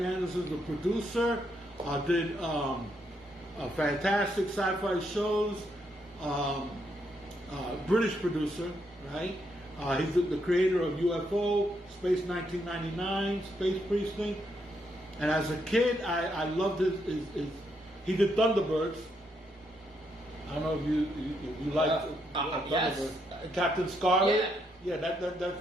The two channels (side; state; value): both; normal; correlation 0.77